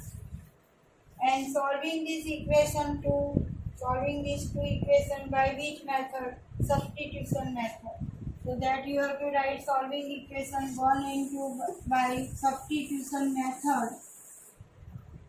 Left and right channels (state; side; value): identical; both; correlation 1.00